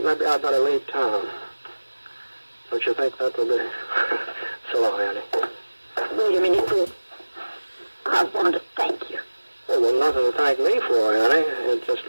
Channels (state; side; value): inverted; both; correlation -1.00